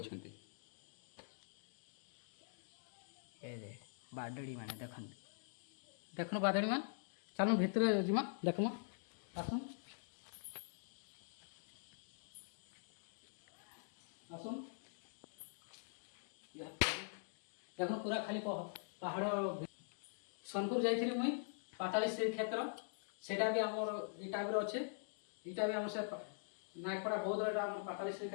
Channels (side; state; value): right; silent; digital silence